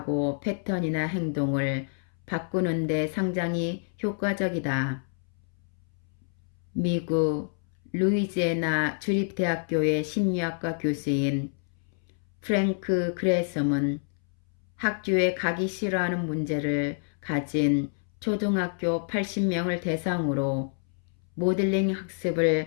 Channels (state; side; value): silent; right; 59 dB below the other